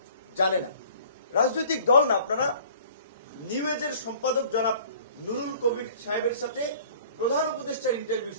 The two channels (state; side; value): inverted; both; correlation -0.50